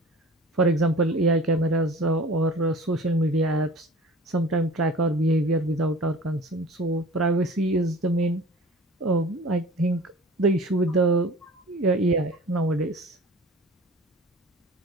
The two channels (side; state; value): both; normal; correlation 0.42